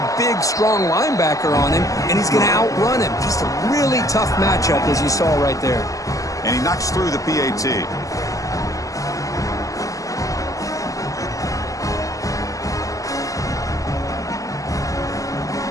big, strong linebacker on him, and he's going to outrun him. Just a really tough matchup, as you saw right there. And he knocks through the PAT.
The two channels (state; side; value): late; right; 0.16 ms